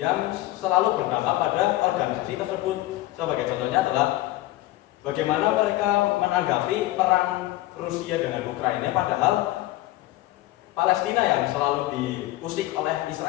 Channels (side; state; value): right; quieter; 16.7 dB